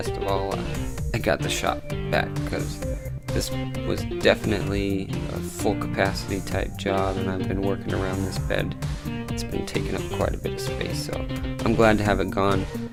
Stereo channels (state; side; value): identical; both; correlation 1.00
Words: of all, I got the shop back because this was definitely a full capacity type job, and I've been working around this bed. It's been taking up quite a bit of space, so I'm glad to have it gone,